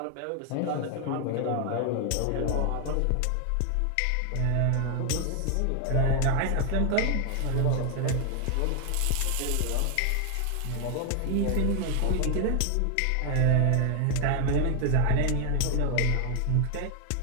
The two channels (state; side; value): different; both; correlation 0.00